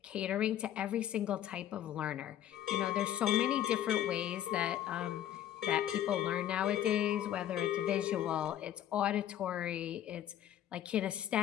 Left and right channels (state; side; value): quieter; right; 11.4 dB